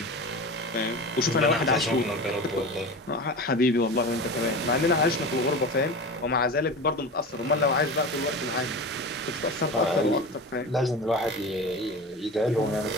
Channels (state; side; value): normal; both; correlation 0.30